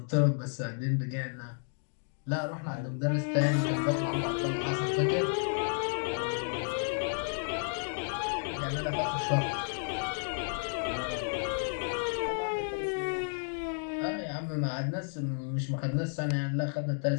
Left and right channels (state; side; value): silent; right; digital silence